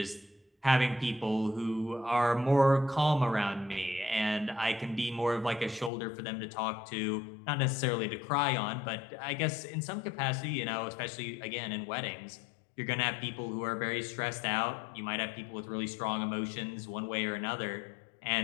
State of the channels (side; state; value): right; drops out; at 5.9 s